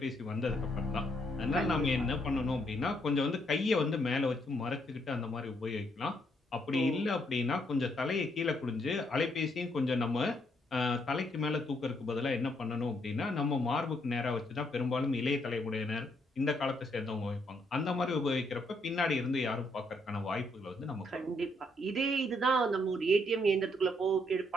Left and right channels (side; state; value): both; normal; correlation 0.73